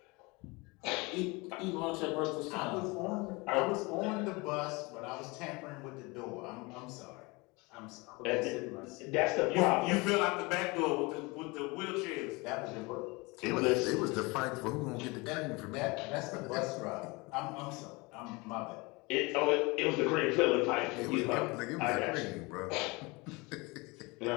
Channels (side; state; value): right; quieter; 25.8 dB